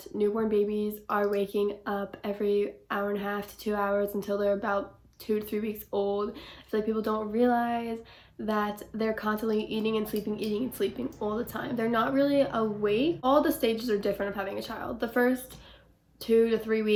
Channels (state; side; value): identical; both; correlation 1.00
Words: newborn babies are waking up every hour and a half to 2 hours until they're about 2 to 3 weeks old. I feel like people don't realize that they're constantly eating and sleeping all the time. They're not really awake. All the stages are different of having a child. The first 2 to 3